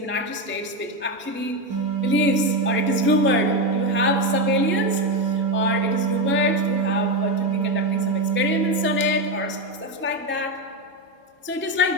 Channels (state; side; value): normal; both; correlation 0.11